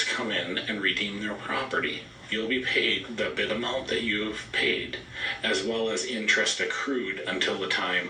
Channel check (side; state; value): both; identical; correlation 1.00